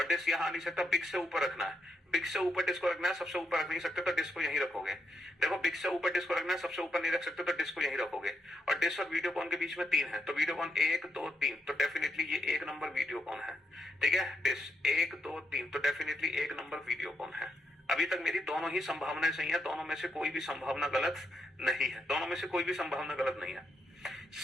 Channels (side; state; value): both; normal; correlation 0.80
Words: डिश यहां आ नहीं सकता, बिग से ऊपर रखना है। बिग से ऊपर डिश को रखना है, सबसे ऊपर रख नहीं सकते तो डिश को यहीं रखोगे। देखो बिग से ऊपर डिश को रखना है, सबसे ऊपर नहीं रख सकते तो डिश को यहीं रखोगे। और डिश और वीडियोकॉन के बीच में 3 है, तो वीडियोकॉन 1 2 3, तो डेफिनेटली ये 1 नंबर वीडियोकॉन है। ठीक है, डिश 1 2 3, तो डेफिनेटली 1 नंबर वीडियोकॉन है। अभी तक मेरी दोनों ही संभावनाएं सही है, दोनों में से कोई भी संभावना गलत नहीं है, दोनों में से कोई भी संभावना गलत नहीं है।